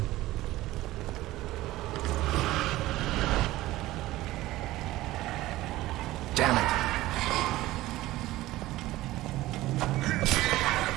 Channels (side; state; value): left; quieter; 16.9 dB